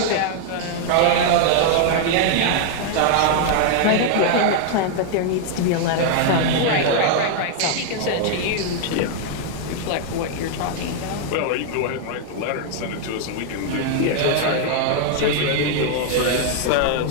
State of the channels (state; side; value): different; both; correlation 0.00